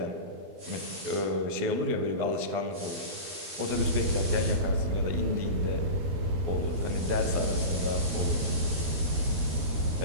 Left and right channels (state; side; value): late; left; 12 ms